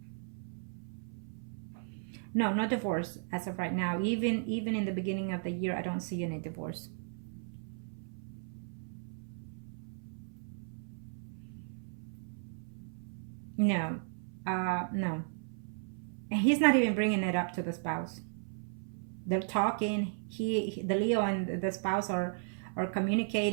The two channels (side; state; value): left; silent; 54 dB below the other